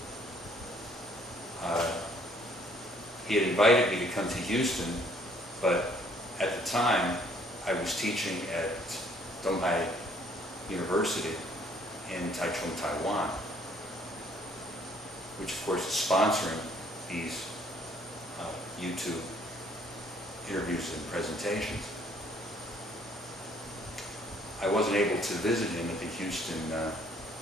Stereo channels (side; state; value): both; normal; correlation 0.62